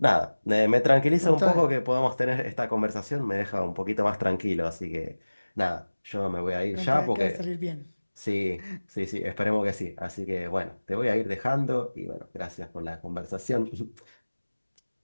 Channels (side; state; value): both; inverted; correlation -1.00